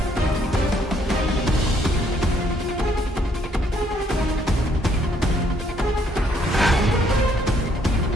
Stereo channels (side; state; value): both; normal; correlation 0.68